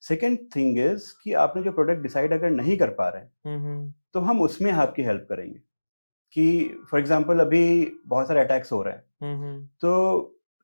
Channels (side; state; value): both; inverted; correlation -1.00